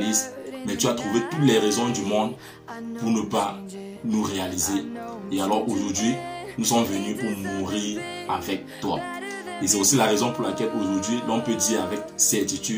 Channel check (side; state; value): both; identical; correlation 1.00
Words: mais tu as trouvé toutes les raisons du monde pour ne pas nous réaliser. Et alors aujourd'hui, nous sommes venus pour mourir avec toi. Et c'est aussi la raison pour laquelle aujourd'hui, l'on peut dire avec